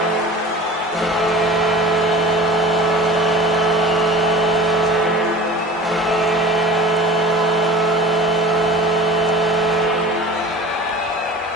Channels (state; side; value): normal; both; correlation 0.39